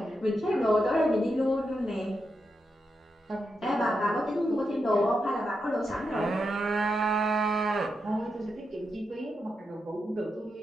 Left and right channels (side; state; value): both; normal; correlation 0.85